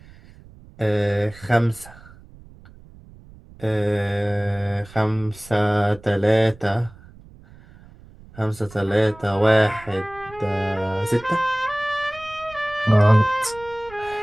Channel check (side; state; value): right; noise; rumble, 22 dB below the sound